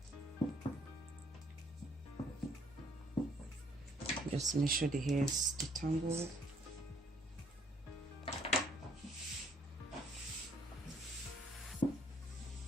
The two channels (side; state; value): both; normal; correlation 0.64